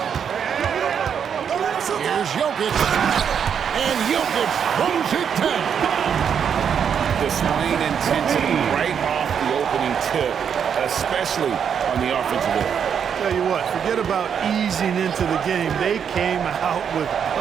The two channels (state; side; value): quieter; left; 7.6 dB